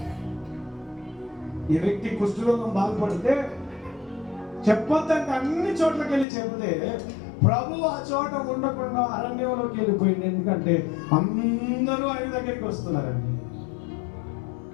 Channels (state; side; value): drops out; right; at 6.2 s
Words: ఈ వ్యక్తి కుష్ఠరోగం బాగుపడితే చెప్పొద్దంటే అన్ని చోట్లకి వెళ్ళి చెబితే ప్రభు ఆ చోట ఉండకుండా అరణ్యంలోకి వెళ్ళిపోయింది. ఎందుకంటే అందరూ ఆయన దగ్గరికి వస్తున్నారండి.